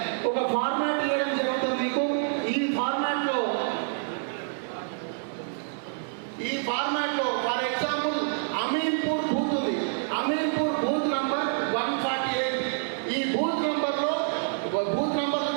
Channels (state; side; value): silent; left; digital silence